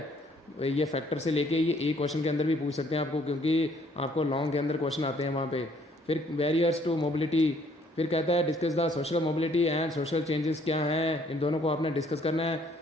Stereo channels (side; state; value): both; normal; correlation 0.63